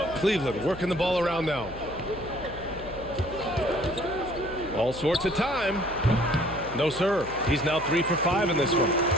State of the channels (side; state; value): left; noise; hum, 15 dB below the sound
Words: Cleveland working the ball around now. All sorts of time. No, sir. He's now 3 for 5 in this one.